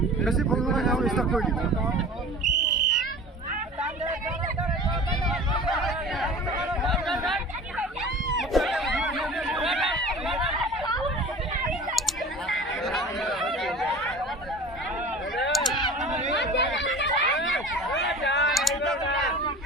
বেছি ভুল নহয় খেল ষ্টাৰ্ট কৰি দিম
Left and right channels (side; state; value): both; normal; correlation 0.40